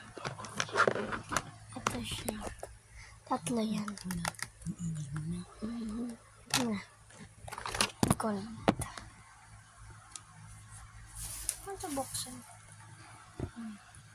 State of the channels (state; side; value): identical; both; correlation 1.00